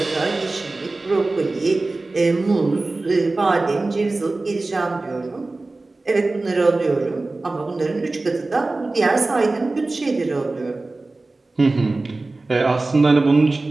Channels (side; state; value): left; quieter; 3.2 dB